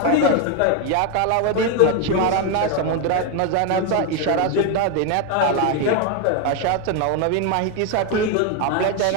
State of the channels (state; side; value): different; both; correlation 0.01